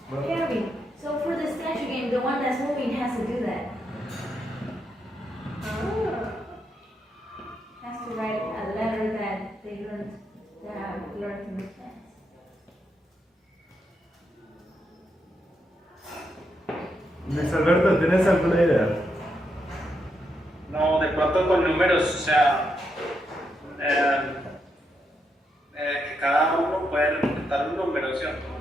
¿tienes? Harry, so for the statue game, the one that's moving has to do that. order to make sense. Luis Alberto, ¿tienes alguna idea? No, de pronto con números, o sea, que cada uno puede representar un número, ¿cierto?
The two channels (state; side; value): normal; both; correlation 0.81